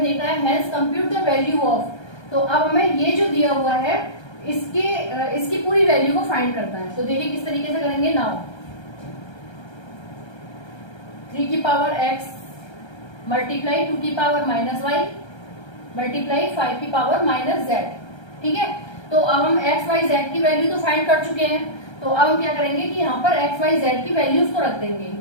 देखना है hence compute the value of. तो अब हमें ये जो दिया हुआ है इसकी पूरी वैल्यू को फाइंड करना है। तो देखिए किस तरीके से करेंगे। नाउ 3 की पावर x मल्टीप्लाई 2 की पावर माइनस y मल्टीप्लाई 5 की पावर माइनस z। ठीक है, तो अब हम x, y, z की वैल्यू तो फाइंड कर चुके हैं। तो अब हम क्या करेंगे कि यहाँ पर x, y, z की वैल्यूज को रख देंगे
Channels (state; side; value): late; right; 1.3 ms